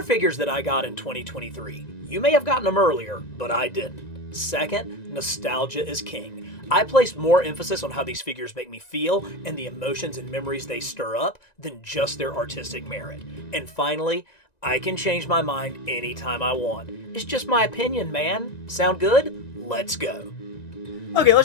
figures that I got in 2023. You may have gotten them earlier, but I didn't. Second, nostalgia is king. I place more emphasis on how these figures make me feel and the emotions and memories they stir up than just their artistic merit. And finally, I can change my mind anytime I want. It's just my opinion, man. Sound good? Let's go. Okay,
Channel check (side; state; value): right; late; 1.9 ms